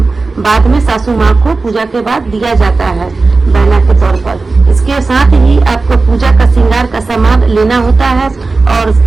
बाद में सासू माँ को पूजा के बाद दिया जाता है बहना के तौर पर। इसके साथ ही आपको पूजा का श्रृंगार का सामान लेना होता है और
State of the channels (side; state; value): left; quieter; 3.8 dB